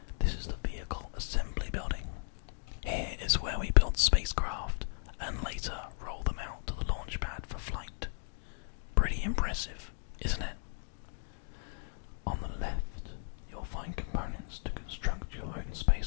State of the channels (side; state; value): right; silent; 54 dB below the other